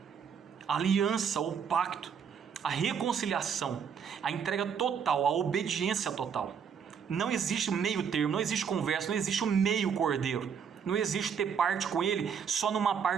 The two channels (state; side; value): quieter; left; 7.1 dB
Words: A aliança, o pacto, a reconciliação, a entrega total, a obediência total. Não existe meio termo, não existe conversa, não existe o meio cordeiro. Não existe ter parte com Ele só numa